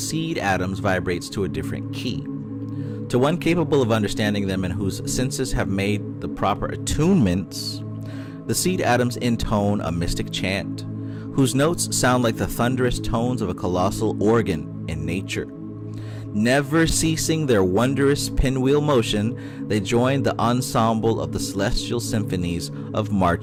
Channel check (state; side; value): identical; both; correlation 1.00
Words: atoms vibrates to a different key. To one capable of understanding them and whose senses have made the proper attunements, the seed atoms intone a mystic chant, whose notes sound like the thunderous tones of a colossal organ in nature. Never ceasing their wondrous pinwheel motion, they join the ensemble of the celestial symphonies of